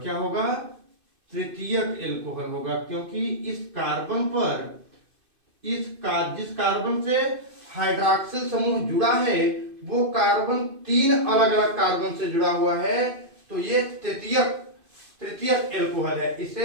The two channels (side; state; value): left; late; 2.5 ms